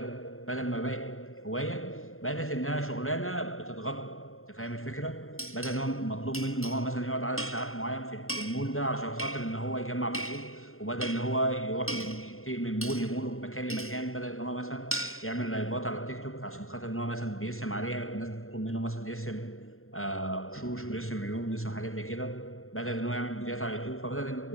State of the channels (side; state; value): right; late; 0.61 ms